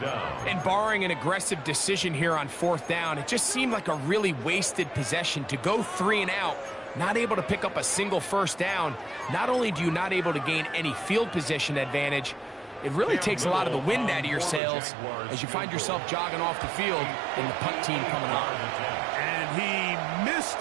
down. And barring an aggressive decision here on 4th down, it just seemed like a really wasted possession to go 3 and out, not able to pick up a single 1st down. Not only do you not able to gain any field position advantage, it really takes a lot of the wind out of your sails as you find yourself jogging off the field and the punt team coming on. And he missed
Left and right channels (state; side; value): drops out; left; at 14.6 s